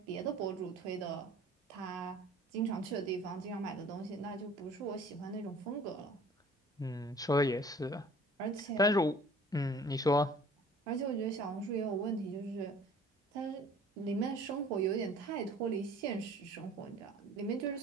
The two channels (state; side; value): normal; both; correlation 0.50